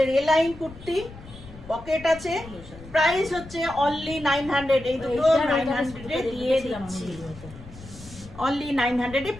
এ লাইন কুর্তি, পকেট আছে, প্রাইস হচ্ছে অনলি 900। এই দুটো 900-এ দিয়ে দিচ্ছি, অনলি 900-এ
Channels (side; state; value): left; noise; rumble, 17 dB below the sound